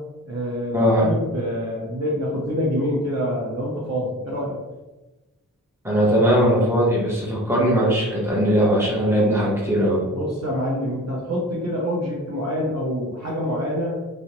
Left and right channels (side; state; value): both; normal; correlation 0.39